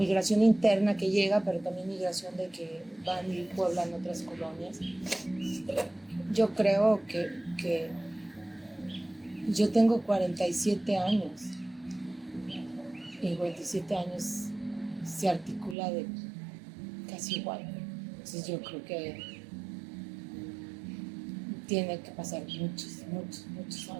interna que llega, pero también migración de que van y pueblan otras colonias. Yo creo que yo tengo 47 años y 47 años se articula de casi igual. Entonces yo creo que tiene que pasar muchos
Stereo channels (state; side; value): drops out; left; at 15.8 s